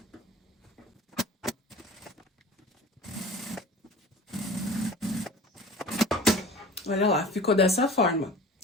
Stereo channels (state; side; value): normal; both; correlation 0.40